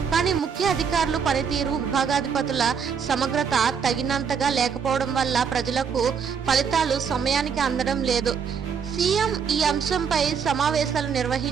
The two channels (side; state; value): left; quieter; 6.7 dB